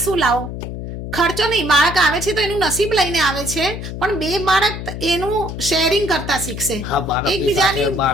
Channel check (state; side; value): noise; left; hum, 7 dB below the sound